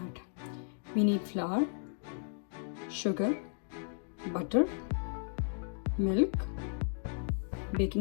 We need flour, sugar, butter, milk,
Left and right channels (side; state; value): right; silent; digital silence